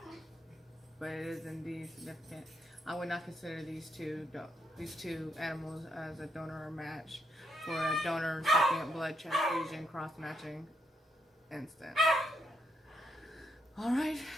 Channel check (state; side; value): normal; both; correlation 0.77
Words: But it is indeed significant. I would not consider these two animals as a donor or match for a donor recipient blood transfusion cross-matching instance. All right,